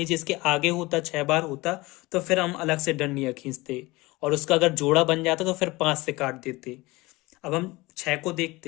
इसके आगे होता 6 बार होता, तो फिर हम अलग से डंडियां खींचते, और उसका अगर जोड़ा बन जाता तो फिर 5 से काट देते। अब हम 6 को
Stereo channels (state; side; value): quieter; right; 21.7 dB